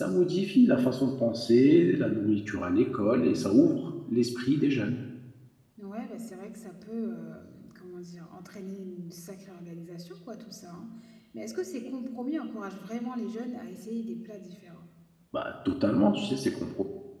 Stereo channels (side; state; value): both; identical; correlation 1.00